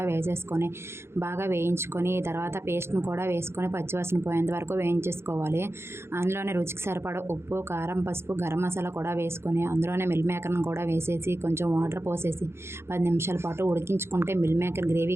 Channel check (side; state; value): left; late; 0.12 ms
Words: వేసేసుకొని బాగా వేయించుకొని తర్వాత పేస్ట్ను కూడా వేసుకొని పచ్చివాసన పోయేంత వరకు వేయించేసుకోవాలి. అందులోనే రుచికి సరిపడా ఉప్పు, కారం, పసుపు, గరం మసాలా కూడా వేసుకొని అందులోనే మిల్ మేకర్ను కూడా వేసేసి కొంచెం వాటర్ పోసేసి 10 నిమిషాల పాటు ఉడికించుకుంటే మిల్ మేకర్